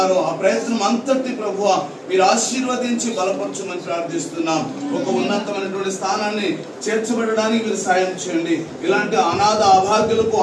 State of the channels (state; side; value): identical; both; correlation 1.00